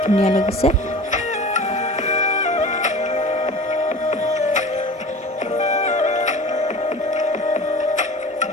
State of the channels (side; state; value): both; normal; correlation 0.37